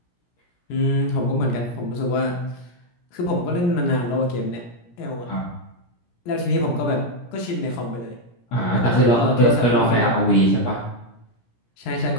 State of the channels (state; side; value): late; right; 17 ms